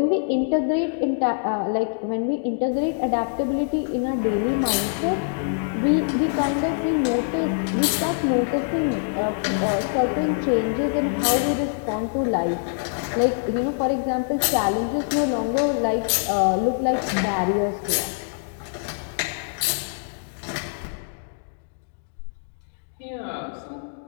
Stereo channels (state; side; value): silent; right; digital silence